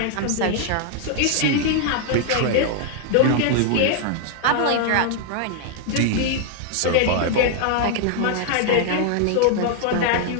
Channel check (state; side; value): different; both; correlation 0.00